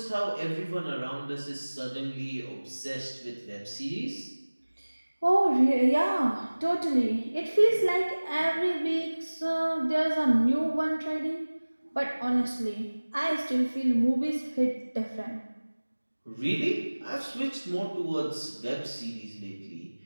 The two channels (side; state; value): both; inverted; correlation -1.00